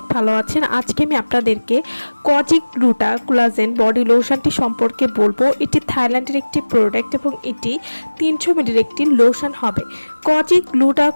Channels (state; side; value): inverted; both; correlation -1.00